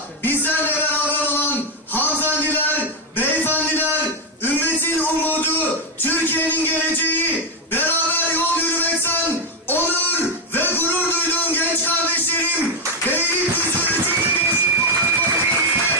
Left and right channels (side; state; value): both; normal; correlation 0.04